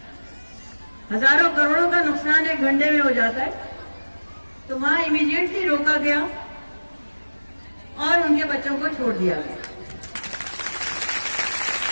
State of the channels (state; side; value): inverted; both; correlation -1.00